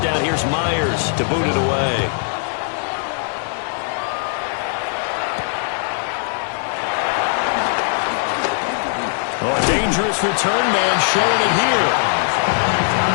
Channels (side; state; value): right; silent; 66 dB below the other